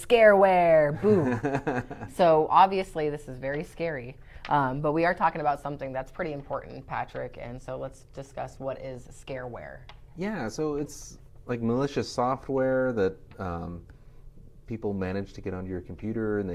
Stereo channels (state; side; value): identical; both; correlation 1.00